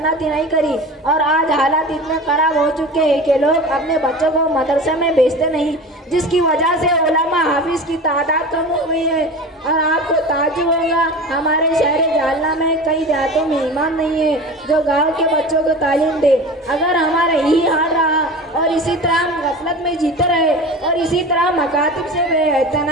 नहीं करी और आज हालात इतने ख़राब हो चुके हैं कि लोग अपने बच्चों को मदरसे में भेजते नहीं, जिसकी वजह से उलमा हाफिज़ की तादाद कम हो गई है। और आपको ताज्जुब होगा, हमारे शहर जालना में कई देहातों में इमाम नहीं है जो गाँव के बच्चों को तालीम दे। अगर हमारा यही हाल रहा और इसी तरह हम गफलत में जीते रहे और इसी तरह मकातिब से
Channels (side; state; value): both; normal; correlation 0.33